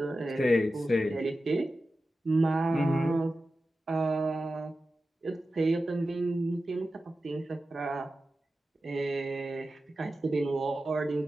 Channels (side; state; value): both; normal; correlation 0.93